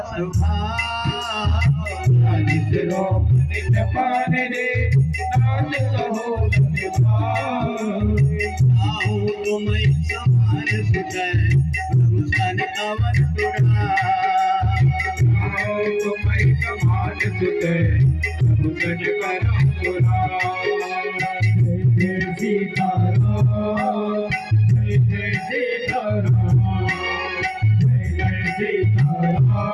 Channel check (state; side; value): identical; both; correlation 1.00